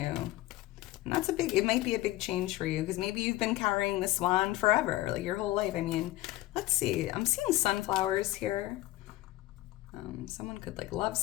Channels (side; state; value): right; quieter; 17.4 dB